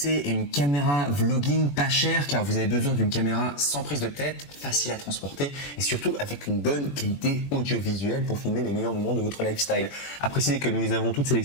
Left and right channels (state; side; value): late; right; 21 ms